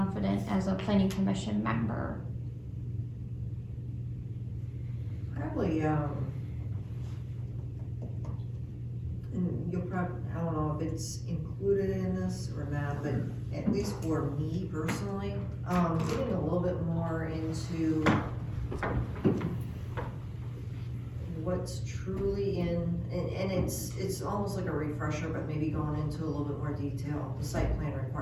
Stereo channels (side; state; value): both; identical; correlation 1.00